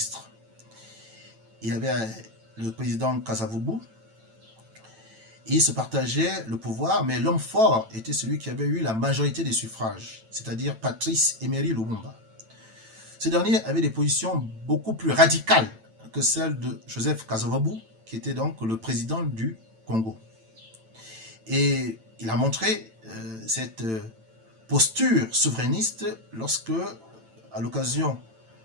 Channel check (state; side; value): late; left; 9.0 ms